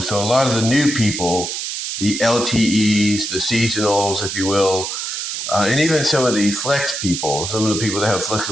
So a lot of the new people, the LTEs, the seasonals, if you will, and even some of the flex people, some of the people that have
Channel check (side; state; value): right; noise; hiss, 4 dB below the sound